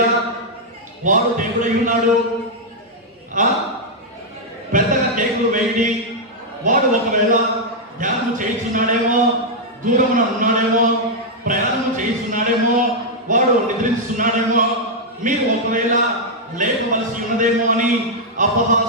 వాడు దేవుడై ఉన్నాడు, పెద్దగా కేకులు వేయండి. వాడు ఒకవేళ ధ్యానం చేయించున్నాడేమో, దూరమున ఉన్నాడేమో, ప్రయాణం చేయిస్తున్నాడేమో, వాడు నిద్రిస్తున్నాడేమో, మీరు ఒకవేళ లేపవలసి ఉన్నదేమో అని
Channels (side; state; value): both; normal; correlation -0.04